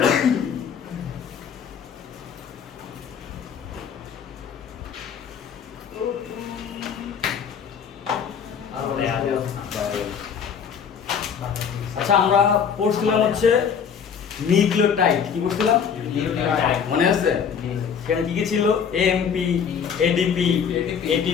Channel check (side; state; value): right; quieter; 7.2 dB